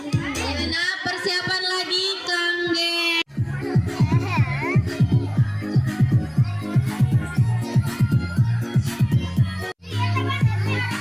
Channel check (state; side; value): identical; both; correlation 1.00